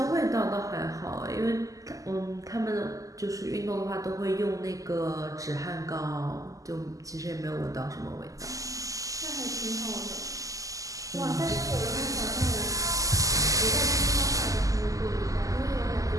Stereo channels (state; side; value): late; left; 0.17 ms